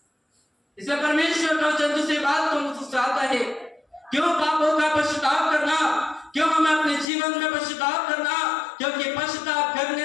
इसलिए परमेश्वर का वचन दूसरी बात को मुझसे आता है, क्यों पापों का पश्चाताप करना, क्यों हमें अपने जीवन में पश्चाताप करना, क्योंकि पश्चाताप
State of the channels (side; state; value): right; drops out; at 7.1 s